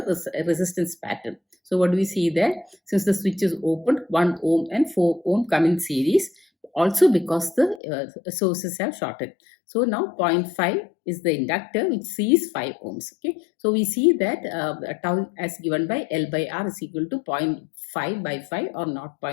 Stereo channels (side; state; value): right; drops out; at 7.8 s